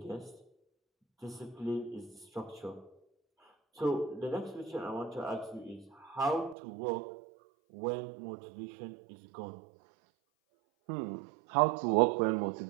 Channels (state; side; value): drops out; left; at 6.6 s